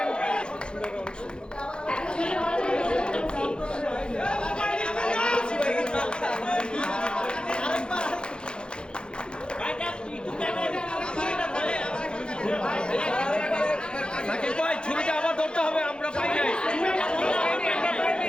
ছুরিটা আবার ধরতে হবে, আমরা পাই নাই।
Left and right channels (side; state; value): right; late; 0.050 ms